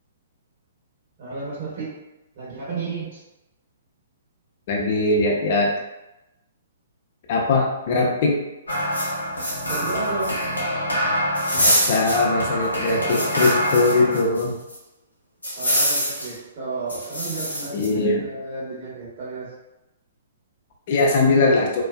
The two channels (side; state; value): both; inverted; correlation -0.55